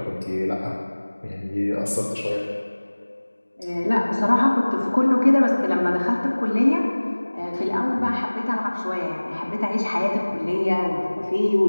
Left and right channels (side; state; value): both; inverted; correlation -1.00